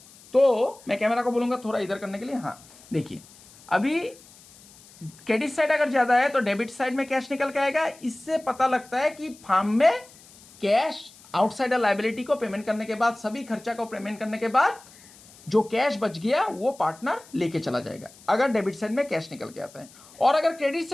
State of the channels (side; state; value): left; noise; hiss, 23 dB below the sound